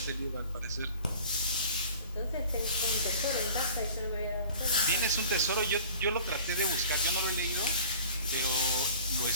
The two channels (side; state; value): both; inverted; correlation -0.45